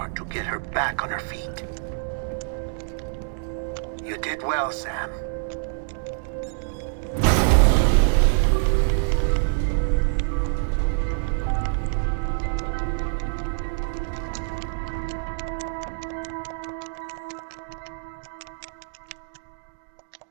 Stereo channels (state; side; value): silent; left; digital silence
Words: to get her back on her feet. You did well, Sam.